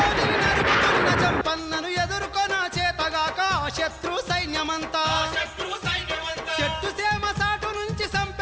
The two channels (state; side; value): identical; both; correlation 1.00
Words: నరుకుతున్న జంపన్నను ఎదుర్కొన చేతగాక ఆ శత్రు సైన్యమంతా, శత్రు సైన్యమంతా చెట్టు సేమ